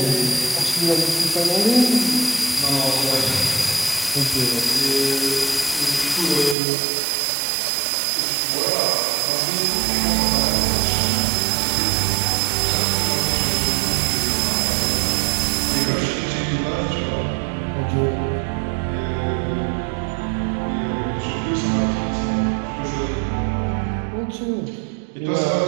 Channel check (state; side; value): drops out; left; at 6.6 s